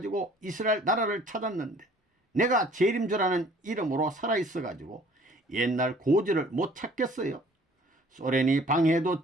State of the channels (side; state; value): both; normal; correlation 0.54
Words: 이스라엘 나라를 찾았는데 내가 재림 주라는 이름으로 살아있어가지고 옛날 고지를 못 찾겠어요. 소련이 방해해도